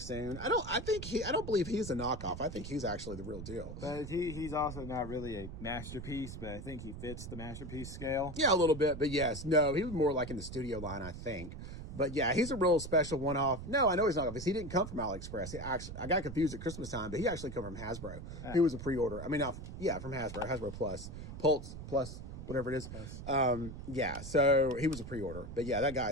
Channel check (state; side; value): noise; right; rumble, 9 dB below the sound